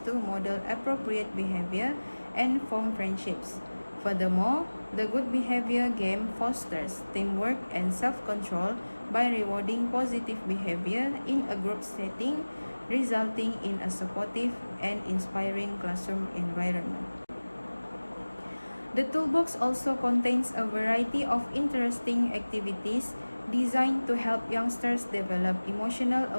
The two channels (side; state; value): both; inverted; correlation -1.00